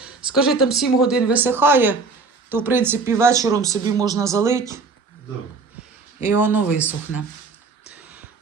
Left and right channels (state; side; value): quieter; left; 4.3 dB